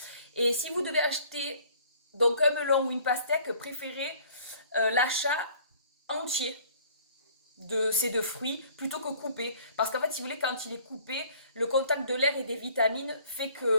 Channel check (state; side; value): inverted; both; correlation -0.54